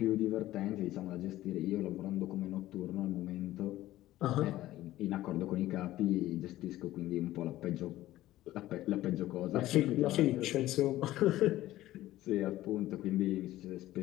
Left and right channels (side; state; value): right; quieter; 15.3 dB